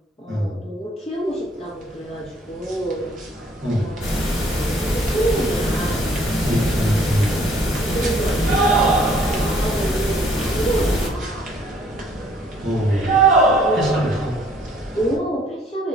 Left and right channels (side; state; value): both; normal; correlation 0.61